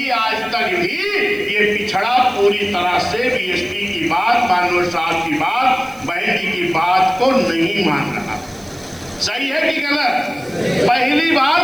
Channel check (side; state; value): right; noise; hiss, 24 dB below the sound